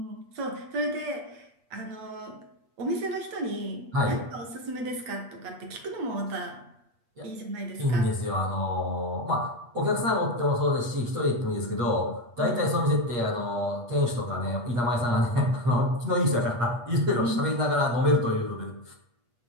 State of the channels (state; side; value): late; left; 8.4 ms